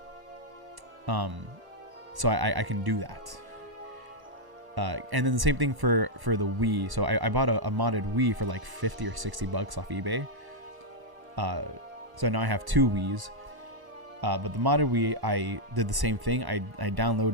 So I can do that. And then the same thing for the Wii. So I bought a modded Wii for like $50 or $60 off eBay. So now I have 2 Wiis. But the modded Wii, I did the same thing. I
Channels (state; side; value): late; left; 1.1 ms